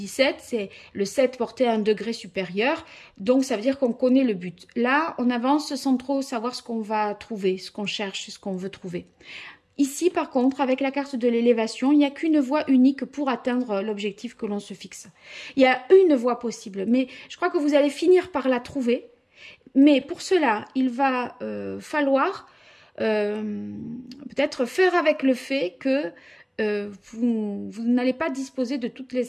c'est le 7 porté à un degré supérieur, donc ça veut dire qu'on connaît le but. Là, on avance sans trop savoir ce qu'on va trouver, ce qu'on cherche, ce qu'on veut trouver. Ici, par contre, avec la carte de l'élévation, il n'y a qu'une voie unique pour atteindre l'objectif que l'on se fixe. Il y a une voie possible, mais je crois que vous allez finir par la trouver. Mais pour cela, il va falloir peut-être faire avec le fait que vous n'allez pas disposer de toutes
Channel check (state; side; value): identical; both; correlation 1.00